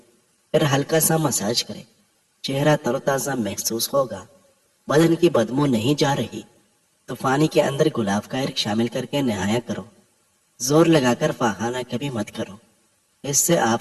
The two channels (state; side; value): identical; both; correlation 1.00